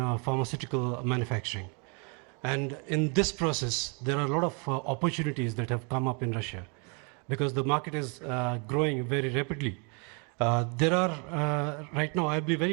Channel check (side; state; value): left; quieter; 34.9 dB